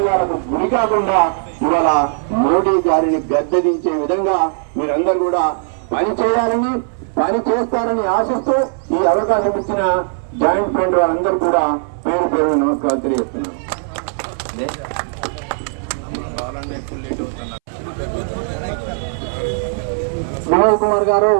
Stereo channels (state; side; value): silent; left; 65 dB below the other